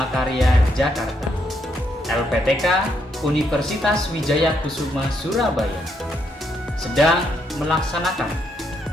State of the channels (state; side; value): normal; both; correlation 0.76